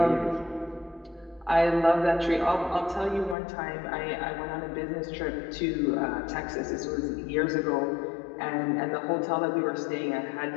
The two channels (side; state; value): right; drops out; at 3.4 s